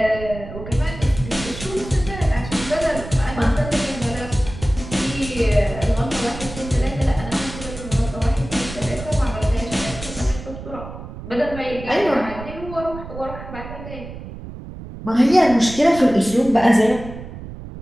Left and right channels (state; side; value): noise; right; rumble, 12 dB below the sound